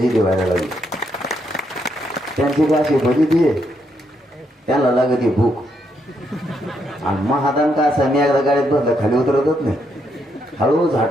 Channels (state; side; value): normal; both; correlation 0.77